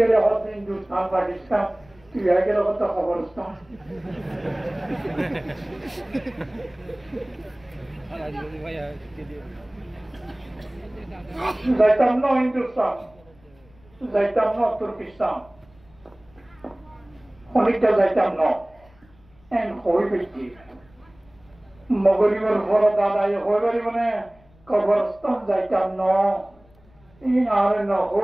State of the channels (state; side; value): noise; left; rumble, 29 dB below the sound